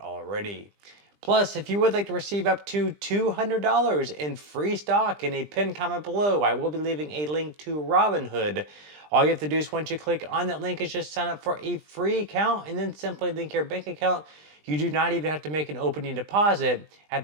Plus, if you would like to receive up to $200 in free stock in a pinned comment below, I will be leaving a link to Robinhood. All you have to do is once you click on that link is just sign up for a free account and then simply link your bank account. You do not even have to make an opening deposit.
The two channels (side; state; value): left; late; 20 ms